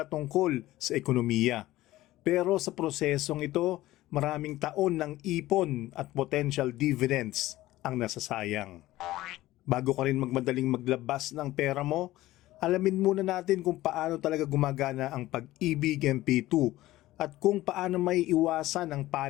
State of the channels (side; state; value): right; quieter; 16.4 dB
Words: tungkol sa ekonomiya. Pero sa prosesong ito, maraming taon ng ipon at potential dividends ang nasasayang. Bago ka rin magmadaling maglabas ng pera mo, alamin muna natin kung paano talaga gumagana ang Pag-ibig MP2 at kung paano may iwasan ang